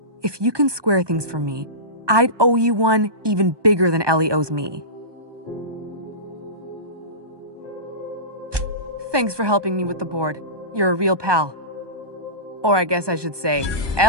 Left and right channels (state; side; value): late; left; 1.2 ms